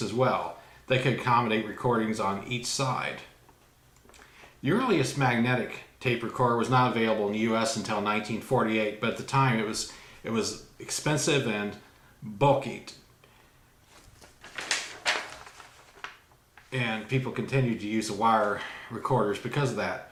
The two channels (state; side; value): identical; both; correlation 1.00